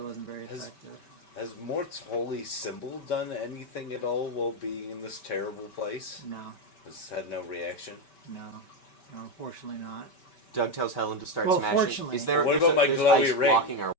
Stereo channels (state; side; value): late; right; 5.2 ms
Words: wasn't very effective. Has Mort's holy symbol done anything at all while being in this terrible place? No, Has had no reaction? no, unfortunately not. Doug tells Helen to start Well, smashing. fortunately. Is there? What there's about my there's glowy ice ring? blocking our